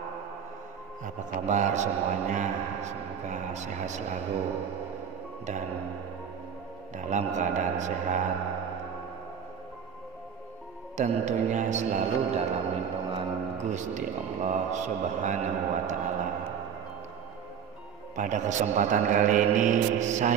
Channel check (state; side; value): quieter; left; 7.8 dB